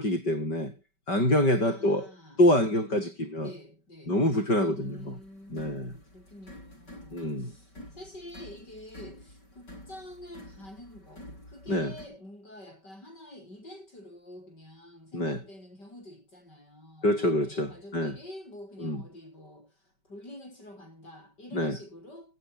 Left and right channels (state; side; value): late; right; 5.2 ms